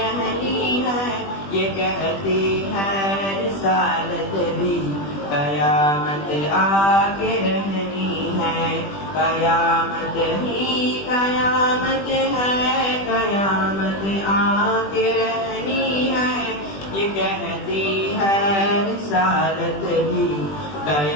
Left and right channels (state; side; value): late; right; 20 ms